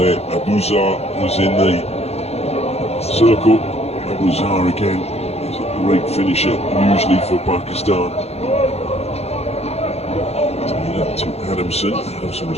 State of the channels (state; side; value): late; right; 0.30 ms